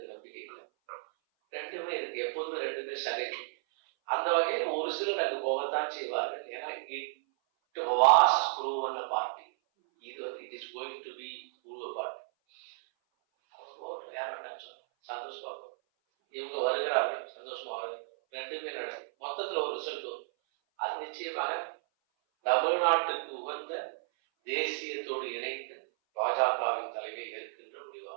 நம்பிக்கை இல்லை. ரெண்டுமே இருக்கு, எப்போதுமே ரெண்டுமே சகஜம். அந்த வகையில் ஒரு சிலர் அங்கு போகத்தான் செய்வார்கள். ஏன்னா it was proven a party. இது வந்து it is going to be prove a party. அவங்க யார் வேண்டாம் சொன்னோம், சந்தோஷமா இவங்க வருகிறார்கள், சந்தோஷமா வருது, ரெண்டுமே நடக்கும். மொத்தத்தில் ஒரு ரிசல்ட் வரும். அது நிச்சயமாக தமிழ்நாட்டுக்கு உகந்த தேசியத்தோடு இணைந்த பாஜகவின் தலைமை ஏற்கின்ற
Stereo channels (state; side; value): silent; left; 56 dB below the other